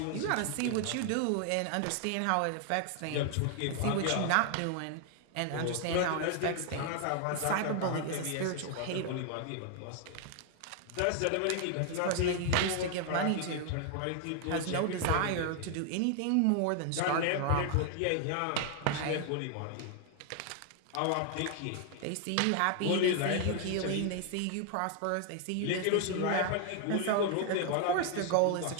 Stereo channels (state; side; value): different; both; correlation 0.00